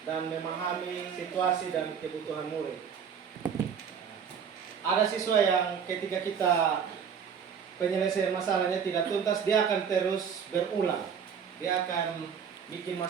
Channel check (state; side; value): quieter; left; 7.2 dB